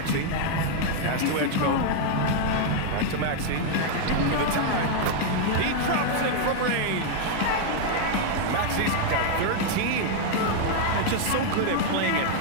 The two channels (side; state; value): both; different; correlation 0.00